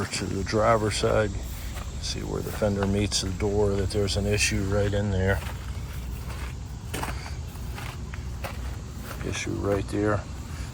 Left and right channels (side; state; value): both; identical; correlation 1.00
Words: to the driver's side, see where the fender meets the door, that there's an issue right in there. Issue right there.